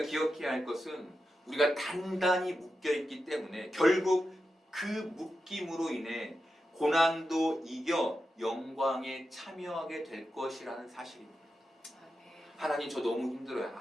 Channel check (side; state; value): both; normal; correlation 0.89